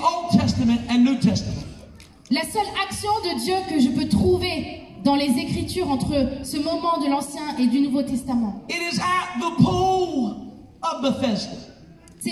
Testament and New Testament. La seule action de Dieu que je peux trouver dans les Écritures entre ce moment de l'Ancien et du Nouveau Testament, It is at the pool of Bethesda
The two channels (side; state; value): both; identical; correlation 1.00